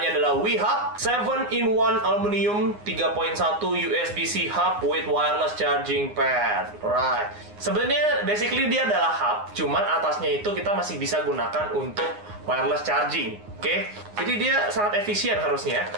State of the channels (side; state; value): left; late; 9.7 ms